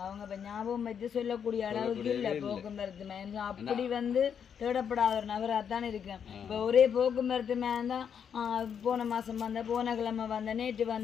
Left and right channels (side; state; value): right; quieter; 7.7 dB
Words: அவங்க இப்ப ஞாபகம் வச்சு சொல்லக்கூடிய அளவுக்கு இல்ல போக்குவரத்து மேன் அப்படி வந்து தேடப்படாத ஒரு நபராகத்தான் இருக்கேன். இப்ப ஒரே போக்குவரத்து மேன் தான் போன மாசம் வந்த, போன கிழமை வந்த, நேற்று